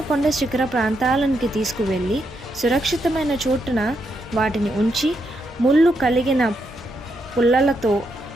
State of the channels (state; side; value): normal; both; correlation 0.80